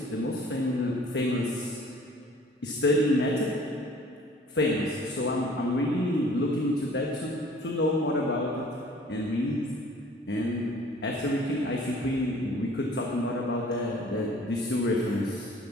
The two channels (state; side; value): normal; both; correlation 0.52